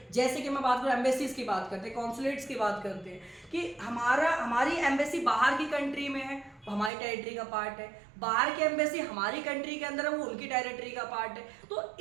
जैसे कि मैं बात करूँ एम्बेसीज की बात करते हैं, कॉन्सुलेट्स की बात करते हैं कि हमारी एम्बेसी बाहर की कंट्री में है, हमारी टेरिटरी का पार्ट है, बाहर की एम्बेसी हमारी कंट्री के अंदर है, वो उनकी टेरिटरी का पार्ट है। तो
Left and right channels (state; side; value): drops out; left; at 6.9 s